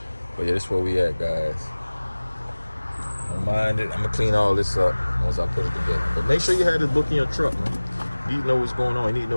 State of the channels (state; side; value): inverted; both; correlation -1.00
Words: But yeah, this is where we at, guys. Don't mind it. I'm gonna clean all this up once I put it together. But make sure you have this book in your truck, man. You need to know what's going on. You need to